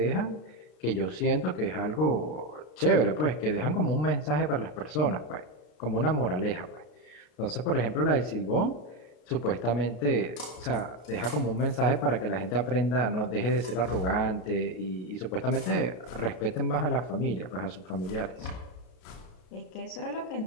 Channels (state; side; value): late; right; 33 ms